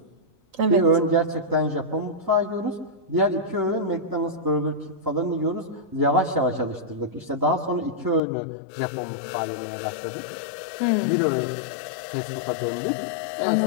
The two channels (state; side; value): drops out; right; at 8.2 s